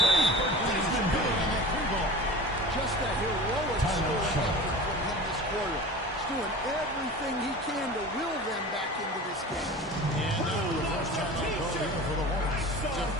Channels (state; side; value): normal; both; correlation 0.36